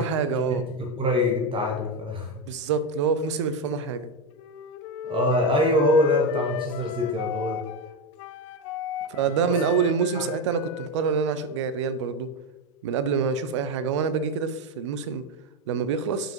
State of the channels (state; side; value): normal; both; correlation 0.12